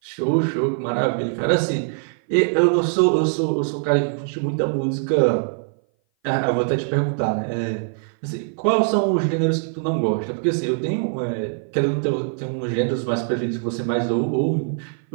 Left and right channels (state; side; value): silent; left; 58 dB below the other